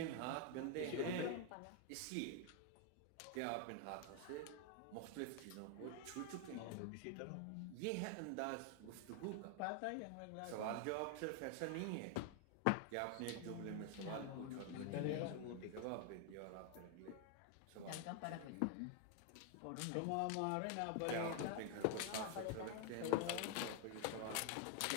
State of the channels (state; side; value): different; both; correlation 0.00